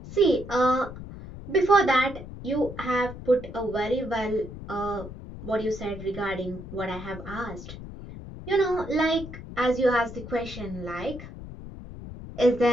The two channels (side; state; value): left; noise; rumble, 12 dB below the sound